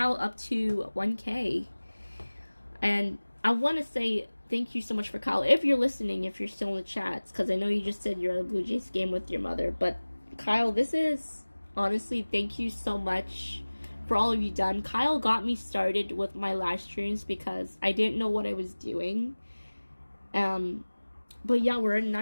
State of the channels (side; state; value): both; inverted; correlation -1.00